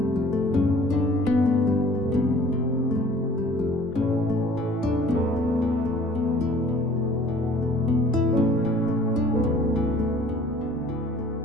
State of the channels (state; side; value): normal; both; correlation 0.52